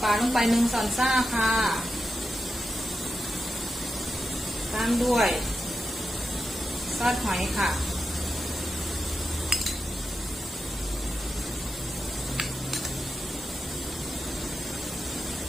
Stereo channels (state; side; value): normal; both; correlation 0.89